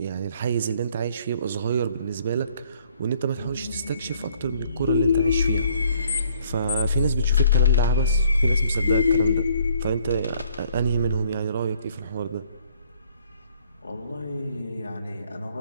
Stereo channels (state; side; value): inverted; both; correlation -0.62